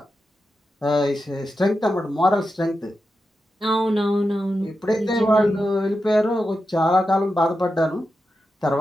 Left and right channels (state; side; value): normal; both; correlation 0.89